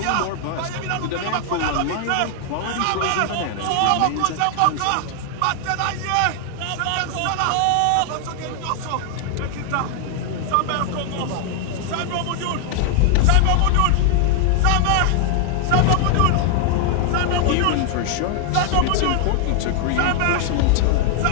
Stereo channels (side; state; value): both; different; correlation 0.00